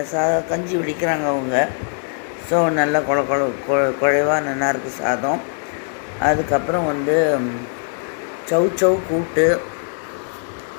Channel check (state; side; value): silent; right; 61 dB below the other